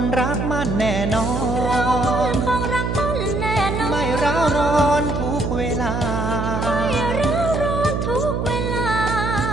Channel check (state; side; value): noise; right; hum, 1 dB below the sound